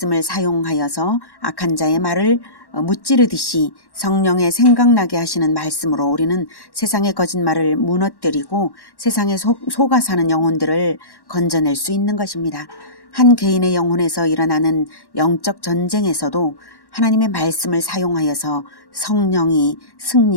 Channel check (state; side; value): late; right; 1.1 ms